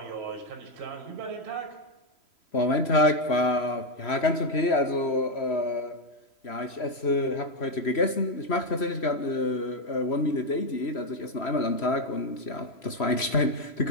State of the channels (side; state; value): right; late; 3.1 ms